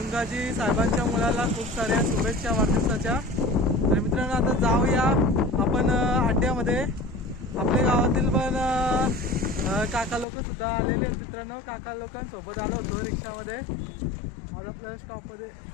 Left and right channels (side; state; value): right; drops out; at 10.2 s